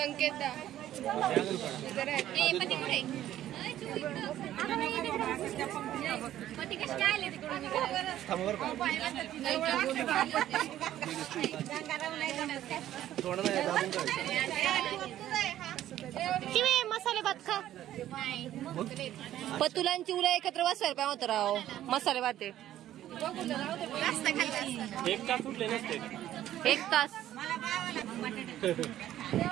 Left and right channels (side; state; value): left; quieter; 12.6 dB